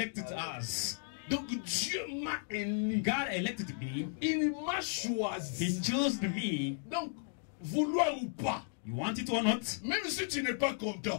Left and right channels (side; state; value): right; silent; digital silence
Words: us. Donc Dieu m'a élu. God elected me. Il m'a He choisi. chose me. Donc, vouloir ou pas, You want it or not? même si tu n'es pas